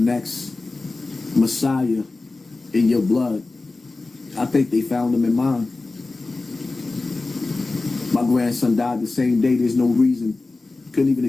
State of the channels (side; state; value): right; quieter; 3.4 dB